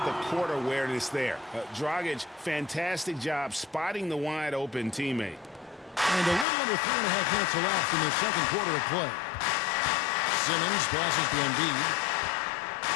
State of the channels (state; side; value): drops out; right; at 6.5 s